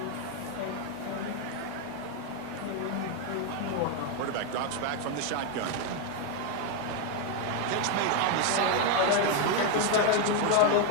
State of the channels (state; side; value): different; both; correlation 0.01